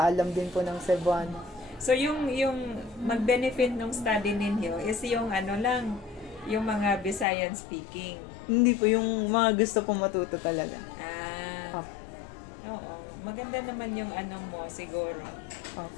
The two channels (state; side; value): drops out; right; at 7.2 s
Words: din po ng Cebuano. So yung mag-benefit ng study ninyo is yung yung mga Visayan speaking. Hindi po, yung mga gusto po matuto talaga. Oo. Maganda naman yung mo siguro.